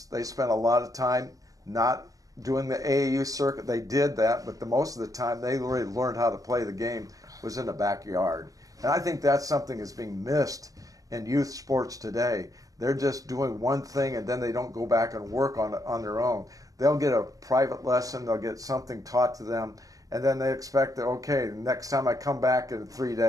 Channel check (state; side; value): late; left; 0.17 ms